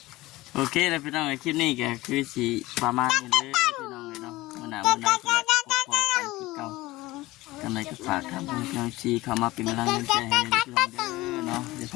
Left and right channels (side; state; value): right; quieter; 18.9 dB